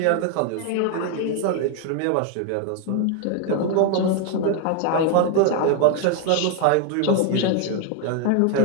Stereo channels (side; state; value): both; different; correlation 0.01